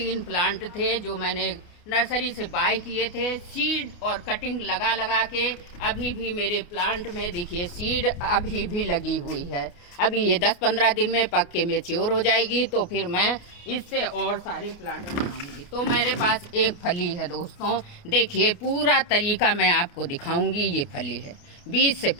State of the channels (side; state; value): right; late; 29 ms